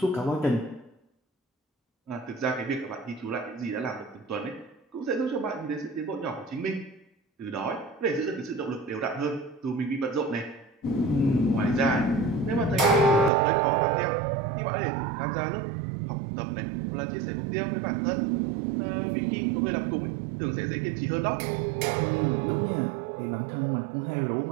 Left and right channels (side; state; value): left; drops out; at 13.3 s